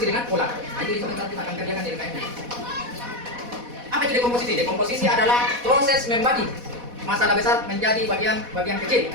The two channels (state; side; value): late; left; 4.1 ms